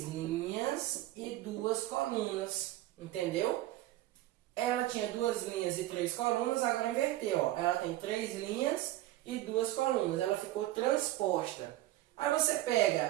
linhas e 2 colunas. Entendeu? Ela tinha 2 linhas e 3 colunas, agora inverteu. Ó. Ela tem 3 linhas e 2 colunas. Ela ficou transposta. Aí você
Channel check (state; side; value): quieter; left; 15.7 dB